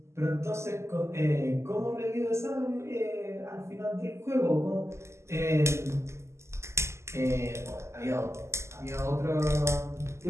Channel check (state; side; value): late; left; 0.13 ms